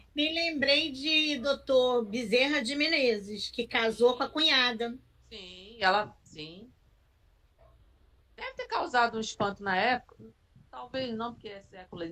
Me lembrei de Dr. Bezerra de Menezes, que casou com a cunhada. Sim. Deve ter causado um espanto na época. Talvez não, porque é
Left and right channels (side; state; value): both; identical; correlation 1.00